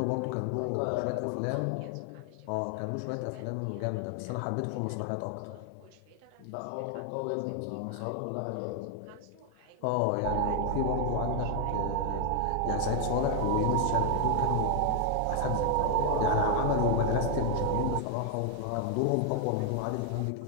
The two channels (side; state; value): both; different; correlation 0.00